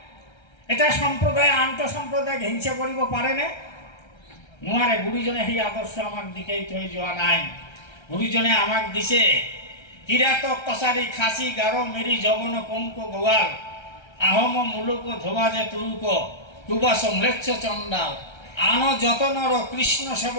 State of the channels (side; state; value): right; late; 1.3 ms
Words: এটা সম্প্ৰদায়ে আন্তঃসম্প্ৰদায়ক হিংসা কৰিব পাৰেনে? নোৱাৰে। গুৰুজনে সেই আদৰ্শ আমাক দিকেই থৈ যোৱা নাই। গুৰুজনে আমাক দিছে কিৰাতক কছাৰী খাচী গাৰো মেৰি যবন কংক গোৱাল, আহোম মুলুক ধোবা যে তুৰুক, কুবাস ম্লেচ্ছ চণ্ডাল, আন যতনৰ কৃষ্ণ